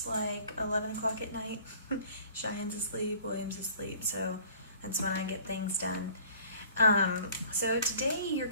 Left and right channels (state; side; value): inverted; both; correlation -0.51